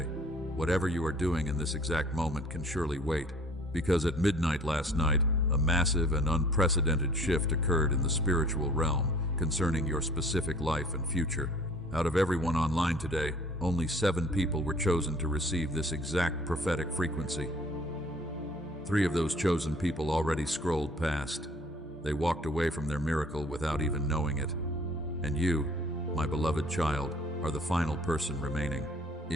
Whatever you are doing in this exact moment can surely wait, because at midnight last night, a massive and unprecedented shift occurred in the spiritual realm concerning your specific life and future. Out of everyone online today, only 7 people were chosen to receive this exact prophetic frequency. 3 of those chosen people already scrolled past. They walked away from their miracle without even knowing it. And you, my beloved child, are the final person remaining.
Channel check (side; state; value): both; normal; correlation 0.52